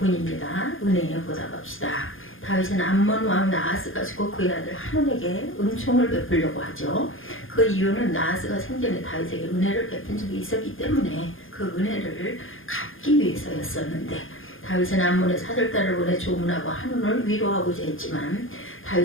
은혜에 보답합시다. 다윗은 암몬 왕 나하스가 죽고 그의 아들 한온에게 은총을 베풀려고 하죠. 그 이유는 나하스가 생전에 다윗에게 은혜를 베푼 적이 있었기 때문에 그 은혜를 갚기 위해서였었는데 다윗은 암몬의 사절단을 보내 조문하고 한온을 위로하고자 했지만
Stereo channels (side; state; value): right; late; 0.59 ms